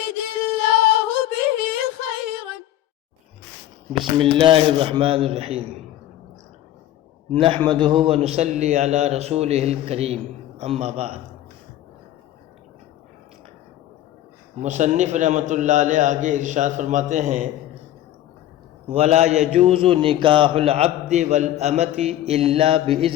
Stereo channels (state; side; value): quieter; right; 12.9 dB